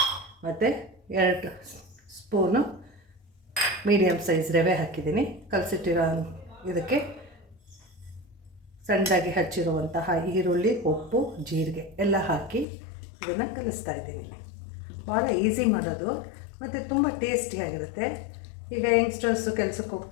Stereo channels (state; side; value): drops out; right; at 12.7 s